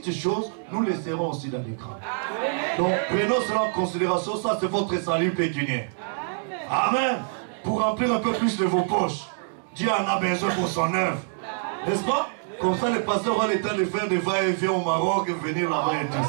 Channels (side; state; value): left; silent; digital silence